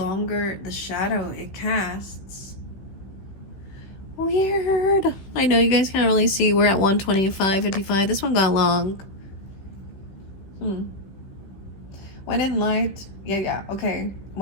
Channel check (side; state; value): right; late; 16 ms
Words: the shadow it casts. Weird. I know you guys can't really see. We're at 125:55. This one got long. When in light, okay.